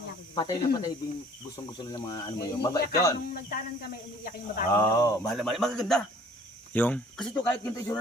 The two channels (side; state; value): both; normal; correlation 0.54